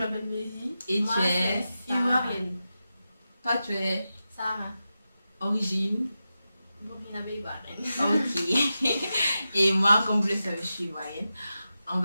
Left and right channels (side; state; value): both; inverted; correlation -0.91